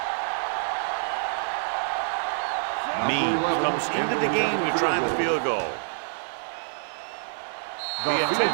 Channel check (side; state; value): left; silent; digital silence